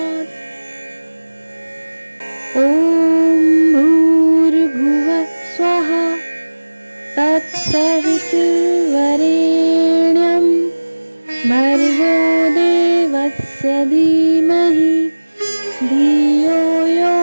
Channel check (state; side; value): inverted; both; correlation -1.00